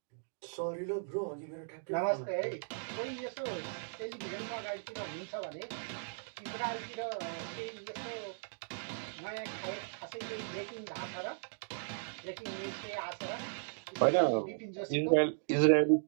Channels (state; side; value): silent; left; digital silence